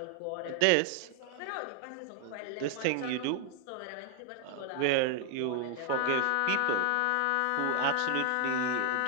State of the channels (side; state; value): both; different; correlation 0.00